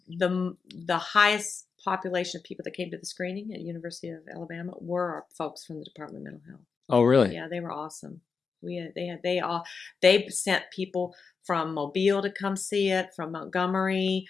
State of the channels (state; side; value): quieter; right; 5.2 dB